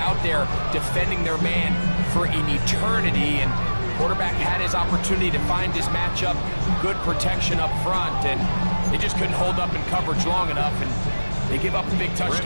there defending their man for an eternity, and Quarterback had his opportunity to find his matchup, good protection up front, and they just couldn't hold up in coverage long enough, and they give up the big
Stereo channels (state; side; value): inverted; both; correlation -1.00